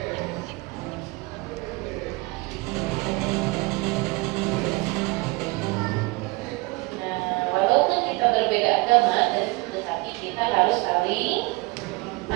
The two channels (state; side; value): quieter; left; 24.9 dB